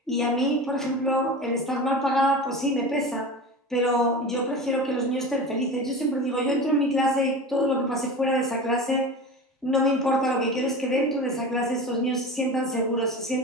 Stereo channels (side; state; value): both; normal; correlation 0.31